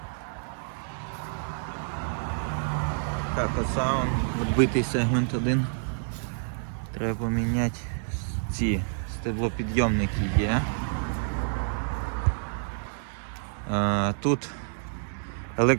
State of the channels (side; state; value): left; silent; digital silence